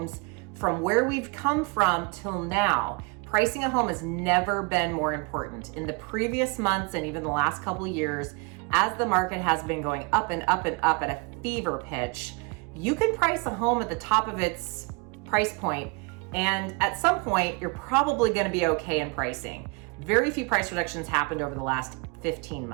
from where we've come from till now. Pricing a home has never been more important. In the previous months and even the last couple of years, as the market has been going up and up and up at a fever pitch, you can price a home at the top of its price point, and at some point, you're probably going to be okay in pricing. Very few price reductions happened over the last 15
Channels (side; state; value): left; quieter; 30.9 dB